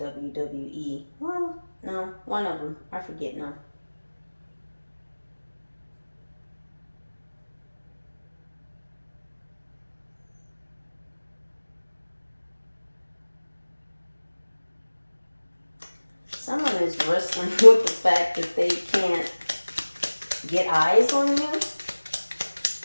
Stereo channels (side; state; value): both; inverted; correlation -1.00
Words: Well, no, one of them. I forget now. Someone is wrestling with the fact that they can't get eyes on you.